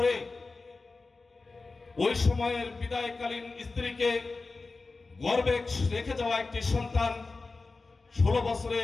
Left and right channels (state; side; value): quieter; right; 3.8 dB